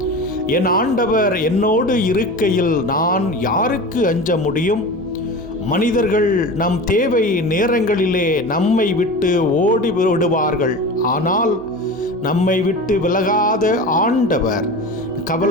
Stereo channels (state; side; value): normal; both; correlation 0.31